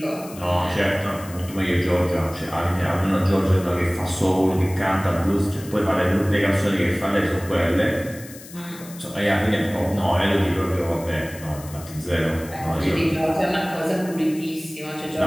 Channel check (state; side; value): noise; left; hiss, 17 dB below the sound